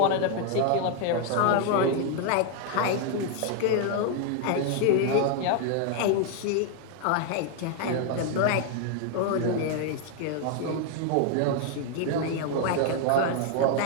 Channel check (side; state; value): both; different; correlation 0.00